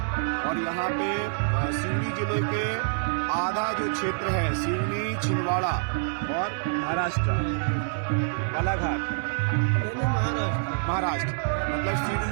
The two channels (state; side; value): silent; left; digital silence